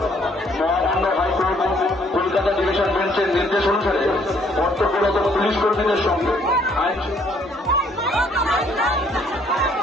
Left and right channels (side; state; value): both; normal; correlation 0.64